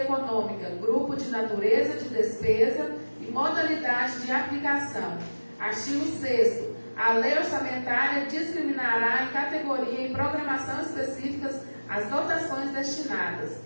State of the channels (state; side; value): inverted; both; correlation -1.00